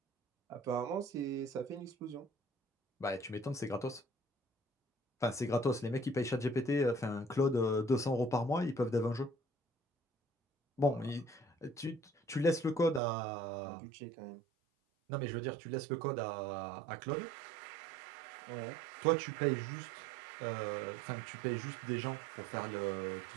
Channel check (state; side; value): drops out; left; at 13.0 s